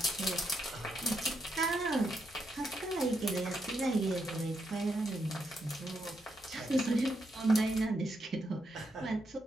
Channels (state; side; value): normal; both; correlation 0.80